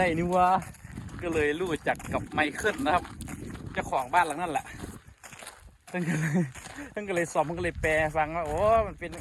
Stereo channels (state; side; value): identical; both; correlation 1.00